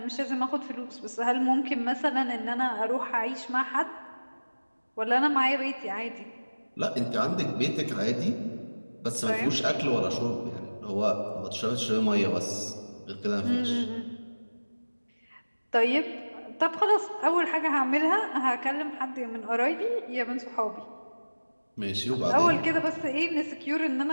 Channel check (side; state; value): both; inverted; correlation -1.00